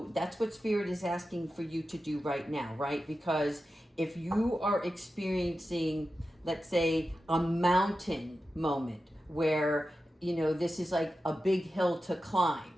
that's what Spirit is asking for you to do right now, right? Because if you are experiencing, let's say, a mountain moment where this is like a big hill to climb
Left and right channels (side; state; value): both; normal; correlation 0.92